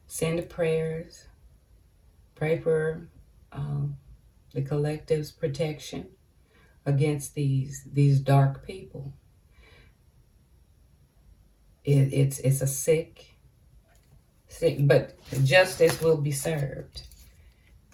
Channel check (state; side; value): identical; both; correlation 1.00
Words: send prayers. Pray for the collective's protection against these dark people. It's a sick, but justice will be served.